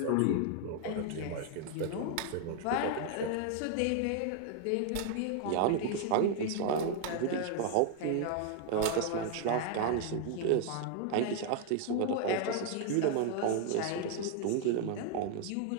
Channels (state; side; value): different; both; correlation 0.00